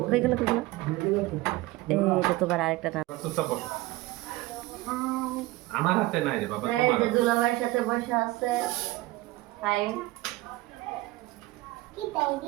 কই গেল, এইটা তোমার আরেকটা নাম। আমার হাতে নাই রে বাবা, এই যে দুলাভাইয়ের সাথে বসে আছে। হাই কি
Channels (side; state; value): left; quieter; 19.2 dB